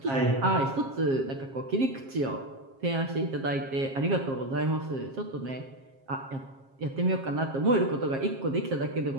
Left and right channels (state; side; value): late; left; 7.5 ms